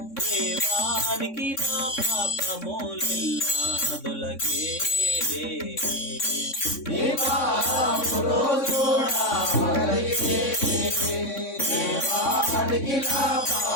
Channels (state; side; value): late; right; 3.6 ms